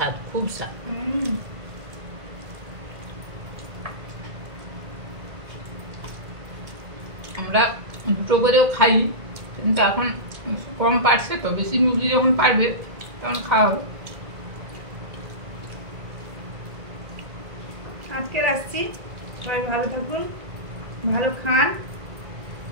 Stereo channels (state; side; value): late; left; 2.1 ms